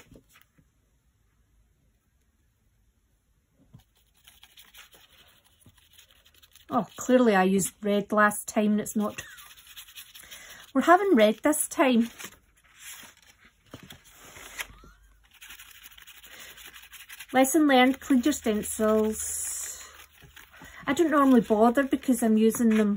Oh, clearly I used red last time and it's not. We're having red this time. Lesson learned, clean your stencils. I don't normally bother because I'm using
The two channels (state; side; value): identical; both; correlation 1.00